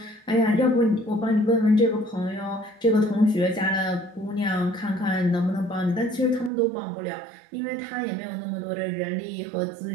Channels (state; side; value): drops out; left; at 6.5 s